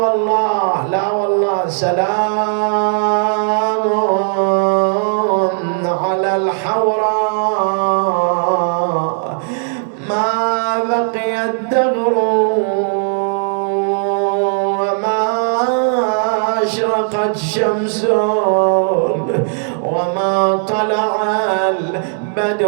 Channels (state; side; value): silent; left; 69 dB below the other